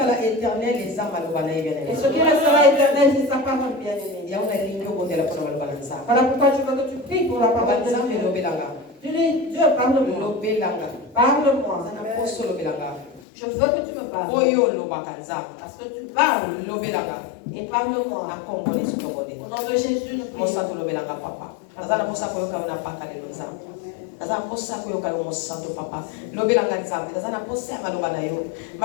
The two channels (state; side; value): drops out; right; at 13.2 s